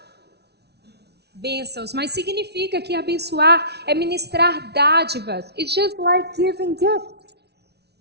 bênçãos, mas significa que abençoar é ministrar dádivas. It's just like giving gifts.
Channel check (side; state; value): left; late; 0.49 ms